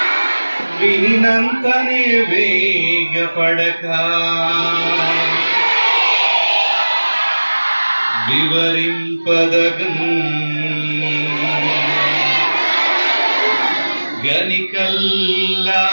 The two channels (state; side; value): inverted; both; correlation -1.00